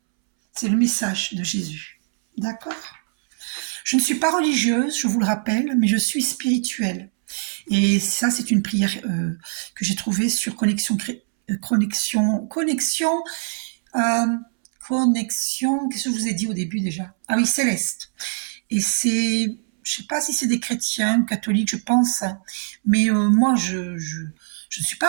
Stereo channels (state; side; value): silent; left; 64 dB below the other